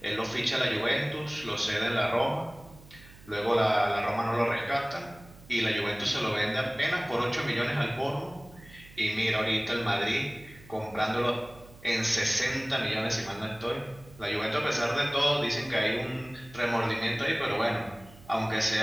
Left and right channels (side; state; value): right; noise; hum, 21 dB below the sound